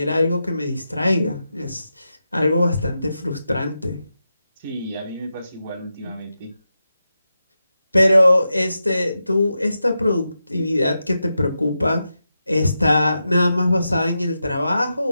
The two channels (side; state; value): both; inverted; correlation -0.89